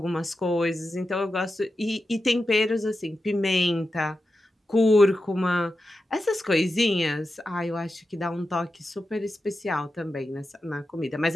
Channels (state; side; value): normal; both; correlation 0.91